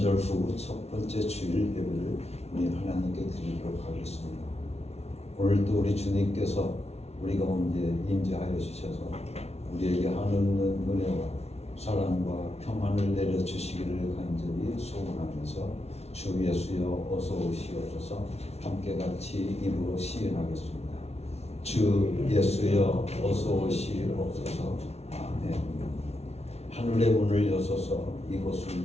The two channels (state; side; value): late; right; 0.31 ms